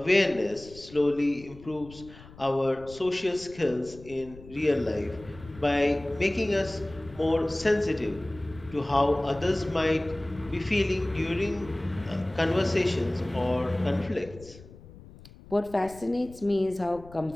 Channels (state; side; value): noise; left; rumble, 19 dB below the sound